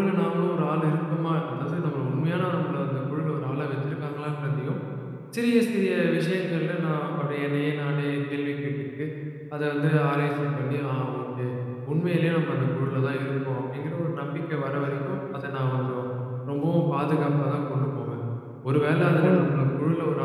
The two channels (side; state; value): both; identical; correlation 1.00